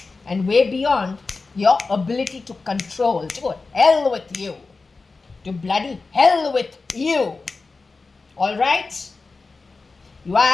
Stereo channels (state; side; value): quieter; right; 4.0 dB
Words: and way beyond your ability to control. To hell with you. To bloody hell with you. Alright? You